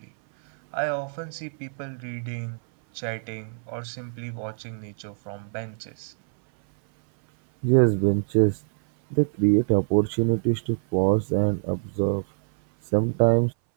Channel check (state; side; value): silent; left; 59 dB below the other